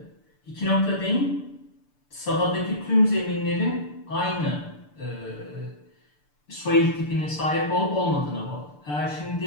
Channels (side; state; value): right; late; 6.8 ms